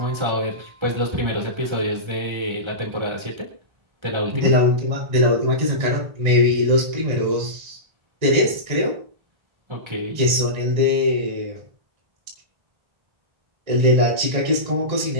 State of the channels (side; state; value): left; late; 1.9 ms